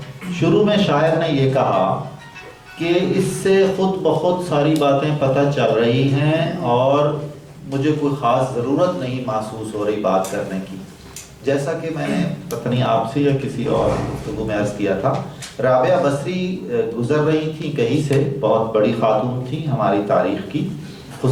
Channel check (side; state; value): both; identical; correlation 1.00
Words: شروع میں شاعر نے یہ کہا کہ اس سے خود بخود ساری باتیں پتہ چل رہی ہیں اور مجھے کوئی خاص ضرورت نہیں محسوس ہو رہی بات کرنے کی، جیسا کہ میں نے پتہ نہیں آپ سے یا کسی اور گفتگو میں عرض کیا تھا۔ رابعہ بصری گزر رہی تھیں کہیں سے، بہت بڑی خاتون تھیں ہماری تاریخ کی،